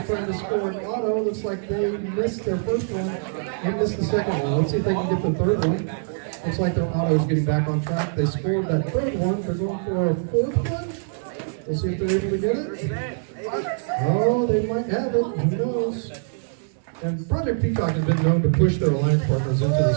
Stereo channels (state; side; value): silent; left; 63 dB below the other